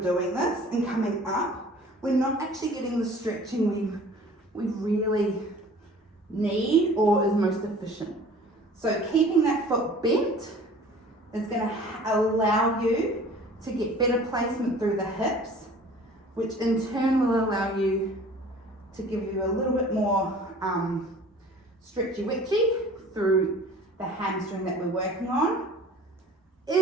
this and coming up, we're not actually getting the stretching we really need or is most efficient. So keeping that foot bent is going to allow you to get better placement through the hips, which in turn will allow you to give you a little bit more stretchy-witchy through the hamstring that we're working on.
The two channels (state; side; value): normal; both; correlation 0.47